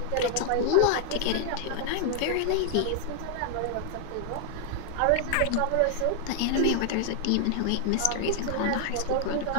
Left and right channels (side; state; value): both; different; correlation 0.00